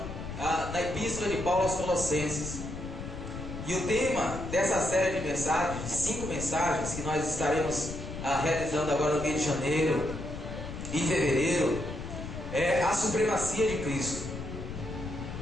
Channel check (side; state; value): left; noise; rumble, 8 dB below the sound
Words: na Epístola de Paulo aos Colossenses. E o tema dessa série de mensagens, de 5 mensagens que nós estaremos realizando agora no mês de janeiro e fevereiro, é a supremacia de Cristo.